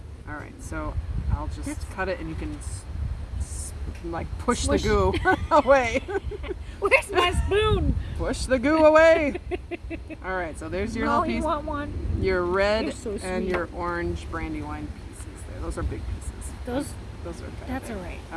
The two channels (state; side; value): identical; both; correlation 1.00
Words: All right, so I'll just cut it and you can like push Smush. the goo away. Where's my spoon? Push the goo away. All right, so there's your No, little you piece. want one? Your red You're so and sweet. your orange Brandywine pieces there. Those are big pieces. Those, Those are kind that's of all right.